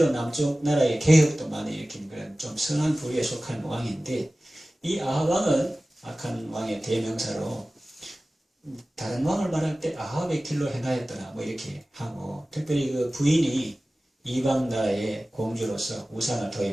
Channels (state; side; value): normal; both; correlation 0.97